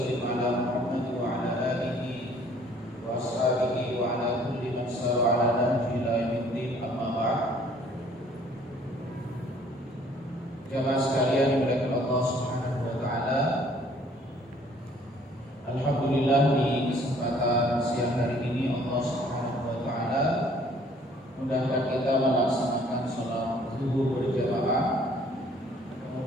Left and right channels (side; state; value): both; normal; correlation 0.58